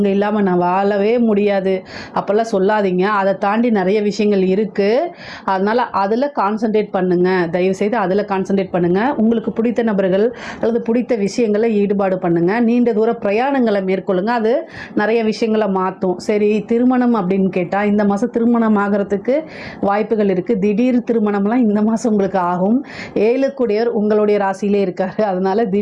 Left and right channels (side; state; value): both; identical; correlation 1.00